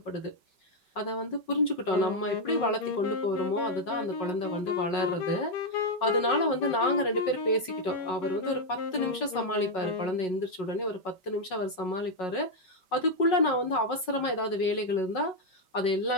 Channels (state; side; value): late; right; 5.4 ms